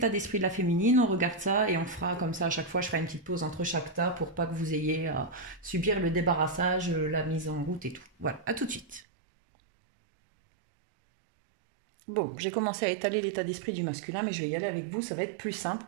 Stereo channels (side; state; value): left; drops out; at 9.1 s